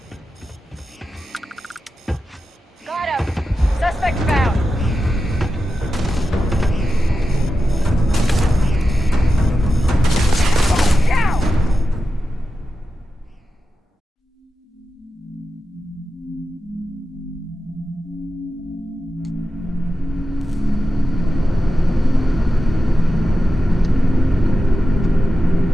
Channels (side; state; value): both; normal; correlation 0.92